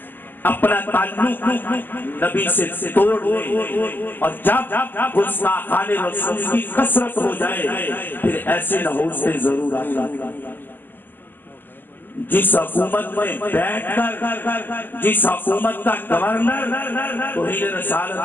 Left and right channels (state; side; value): late; right; 0.094 ms